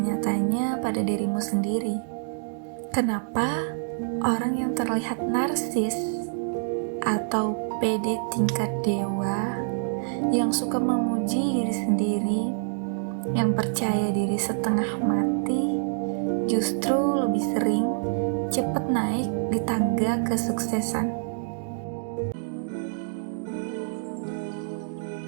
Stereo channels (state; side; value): silent; left; digital silence